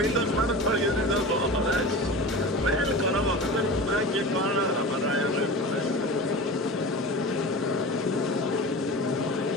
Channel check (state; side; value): normal; both; correlation 0.32